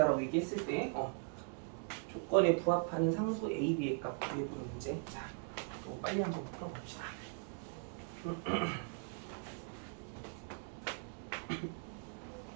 얘기했을 때 조건에 부합하는 상수 A, B의 값 구해보는 문제. 자, 빨리 한번 풀어봅시다.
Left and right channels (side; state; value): left; silent; 51 dB below the other